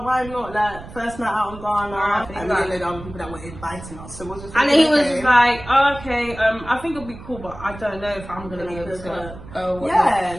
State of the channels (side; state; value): right; noise; rumble, 15 dB below the sound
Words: why not? Like first night out in Ghana, and we like, didn't know other people that were inviting us. So we're just. And like, then he was okay. just like, oh, okay, I think it'll be cool, but I don't know if I'm gonna be able to go.